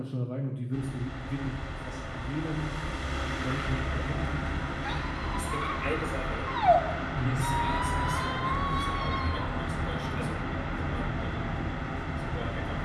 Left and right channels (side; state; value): both; identical; correlation 1.00